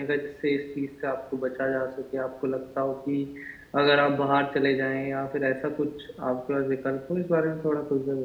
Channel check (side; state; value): both; identical; correlation 1.00